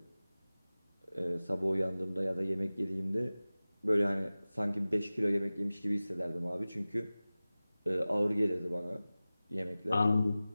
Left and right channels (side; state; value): both; inverted; correlation -0.97